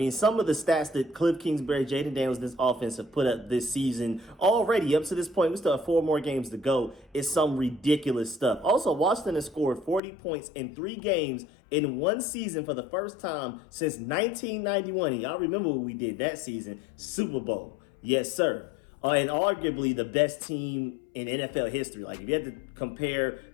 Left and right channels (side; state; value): right; drops out; at 10.0 s